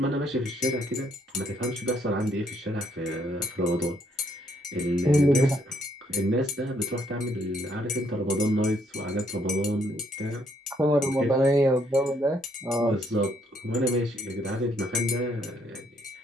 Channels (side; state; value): both; normal; correlation 0.70